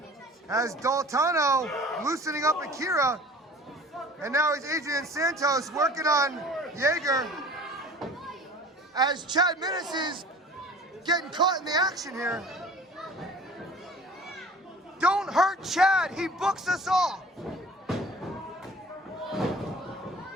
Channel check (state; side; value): normal; both; correlation 0.45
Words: As Daltano loosening up Akira, and now it's Adrian Santos working on Jager. As Chad Minnis is getting caught in the action here. Don't hurt Chad, he books us all.